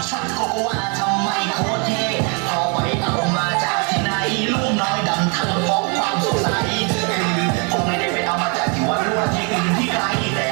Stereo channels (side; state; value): left; quieter; 34.0 dB